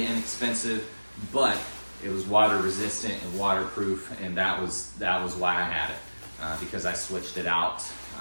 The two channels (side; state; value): both; inverted; correlation -1.00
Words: inexpensive, but it was water resistant and waterproof, and that was why I had it, because I switched it out